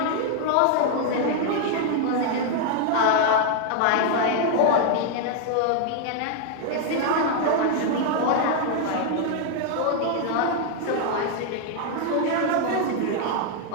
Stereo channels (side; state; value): both; different; correlation 0.00